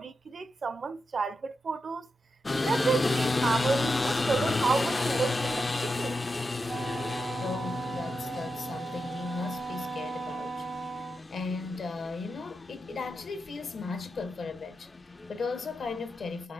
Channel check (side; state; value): both; normal; correlation 0.87